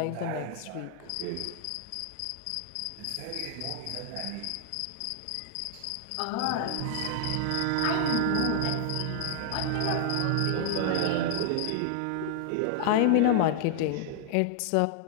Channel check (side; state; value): both; different; correlation 0.00